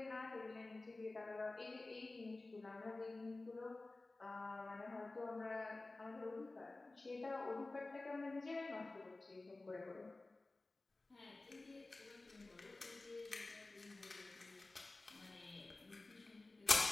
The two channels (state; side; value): quieter; right; 3.2 dB